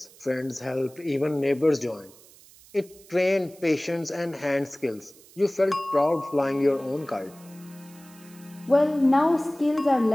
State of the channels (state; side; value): noise; right; hiss, 24 dB below the sound